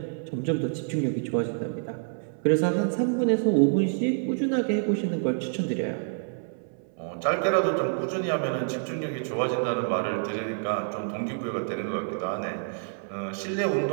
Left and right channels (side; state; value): left; silent; 60 dB below the other